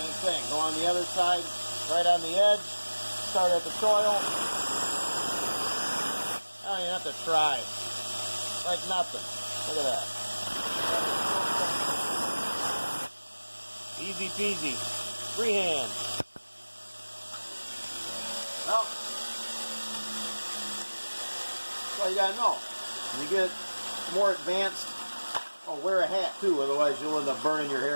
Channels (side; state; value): both; inverted; correlation -1.00